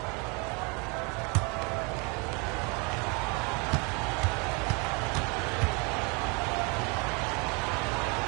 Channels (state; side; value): quieter; left; 30.6 dB